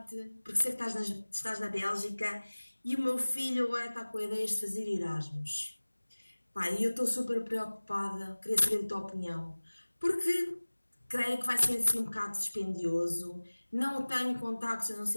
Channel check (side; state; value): both; inverted; correlation -1.00